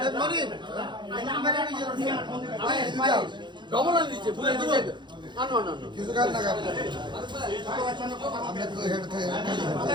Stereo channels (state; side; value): late; left; 0.22 ms